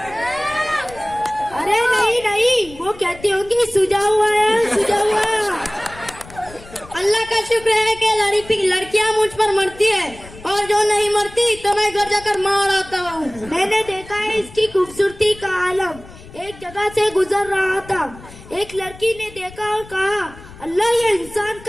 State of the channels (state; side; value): noise; left; rumble, 19 dB below the sound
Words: अरे नहीं नहीं, वो कहती होंगी सुझा हुआ है, सुझा हुआ। अल्लाह का शुक्र है कि लड़कियाँ मुझ पर मरती है, और जो नहीं मरती तो मैं घर जाकर मार आता हूँ। मैंने देखा है इसकी खूबसूरती का आलम। एक जगह से गुजर रहा था, एक लड़की ने देखा और कहा अल्लाह, ये इंसान